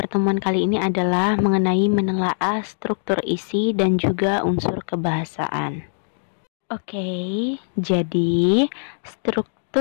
kali ini adalah mengenai menelaah struktur isi dan juga unsur kebahasaan. Oke, jadi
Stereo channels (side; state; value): right; silent; digital silence